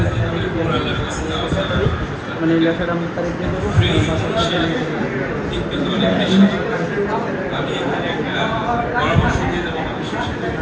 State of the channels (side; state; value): both; identical; correlation 1.00